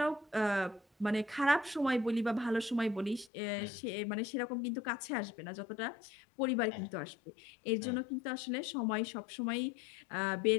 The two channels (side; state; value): right; drops out; at 3.3 s